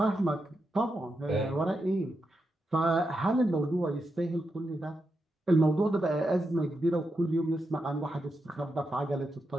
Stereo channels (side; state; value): both; normal; correlation 0.86